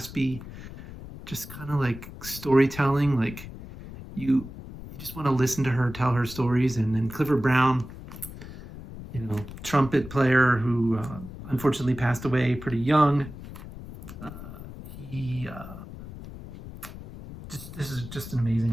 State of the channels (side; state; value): left; noise; rumble, 13 dB below the sound